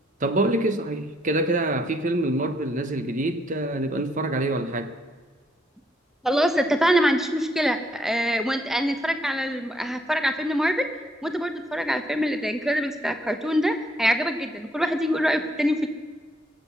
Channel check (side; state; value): both; normal; correlation 0.71